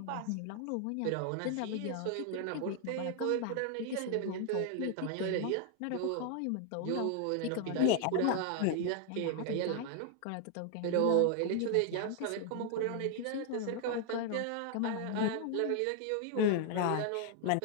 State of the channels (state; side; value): different; both; correlation 0.00